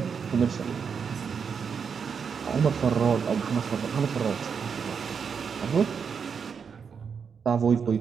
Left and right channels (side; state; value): left; quieter; 6.4 dB